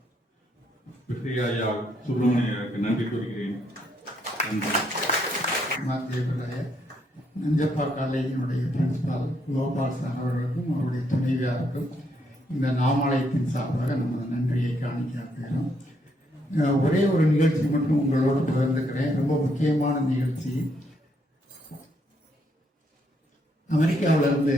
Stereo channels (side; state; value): both; normal; correlation 0.74